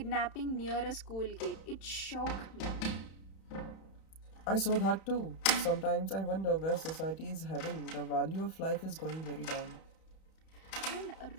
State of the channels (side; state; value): right; late; 31 ms